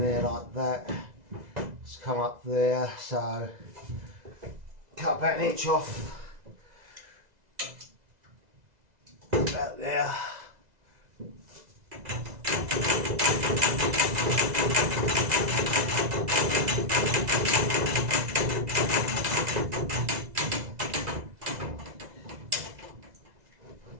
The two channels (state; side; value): late; left; 2.0 ms